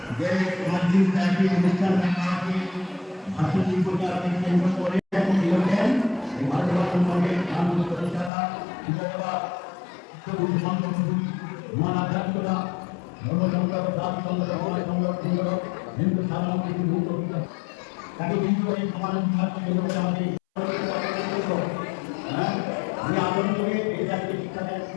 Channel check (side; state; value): right; drops out; at 8.3 s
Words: যে মসজিদ নাকি অনুষ্ঠান নাকি ভাষণ প্রচারণে কেন্দ্র করে দিয়েছেন এই ভারতবর্ষের সঙ্গে আনন্দ প্রতিষ্ঠাতা বিজয়বাদ মহান আধ্যাত্মিকতা ধর্মসংগ্রহ জাতি সংগ্রহ সংগ্রহ হিন্দু সাধারণ কিছু মুক্ত তাকে কিন্তু এই সমাজ বিভাগকে আমাদের আমি আন্দোলন করে এই জাতিকে শিক্ষা দেন